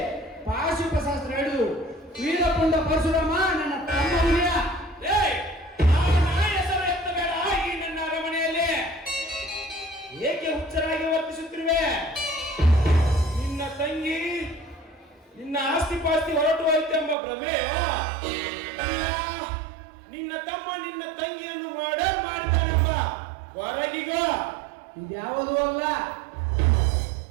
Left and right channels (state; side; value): drops out; left; at 17.2 s